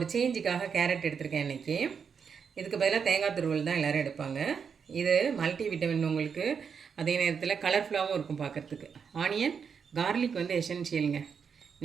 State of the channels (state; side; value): quieter; left; 6.5 dB